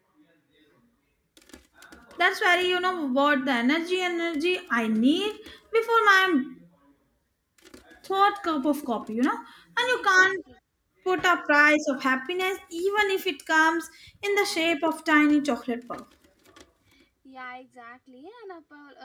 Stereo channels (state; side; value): identical; both; correlation 1.00